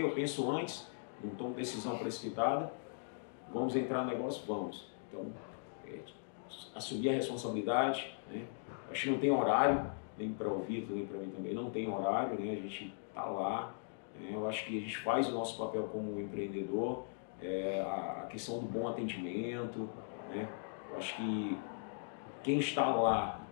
penso antes, não tomo decisão precipitada. Vamos entrar no negócio? Vamos. Então, assumir a responsabilidade, né? Acho que não tem horário, nem para o Vitor, nem para mim também, não tem horário, né? A gente está lá, né? Eu acho que a gente faz o nosso papel como empreendedor, a questão do bom atendimento, né? Eu acho que quem está lá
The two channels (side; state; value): right; silent; digital silence